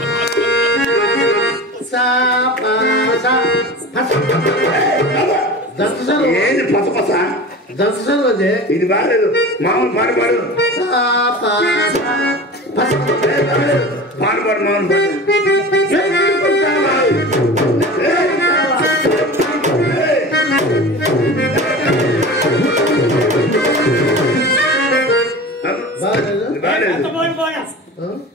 సా పా సా ఏంది పసపస దంతసలు అదే ఇది బాగాలేదు. మామూలు పాడు పాడు సా పా పాడు పాడు మామూలు పాడు.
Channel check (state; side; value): normal; both; correlation 0.33